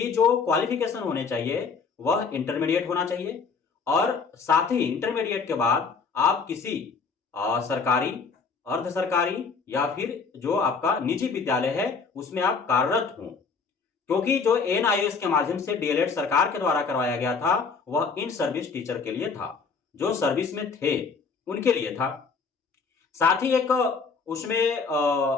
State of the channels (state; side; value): quieter; right; 5.1 dB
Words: जो क्वालिफिकेशन होने चाहिए वह इंटरमीडिएट होना चाहिए, और साथ ही इंटरमीडिएट के बाद आप किसी सरकारी, अर्ध सरकारी या फिर जो आपका निजी विद्यालय है उसमें आप कार्यरत हों। क्योंकि जो एनआईएस के माध्यम से डीएलएड सरकार के द्वारा करवाया गया था वह इन सर्विस टीचर के लिए था, जो सर्विस में थे उनके लिए था। साथ ही एक उसमें